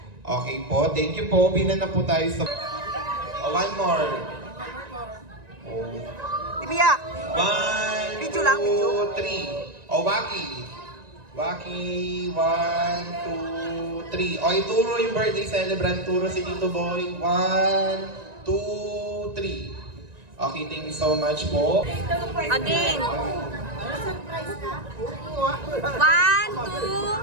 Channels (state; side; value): late; left; 1.9 ms